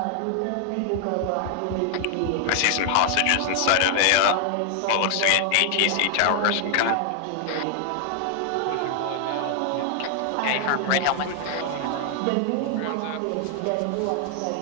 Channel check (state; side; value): different; both; correlation 0.00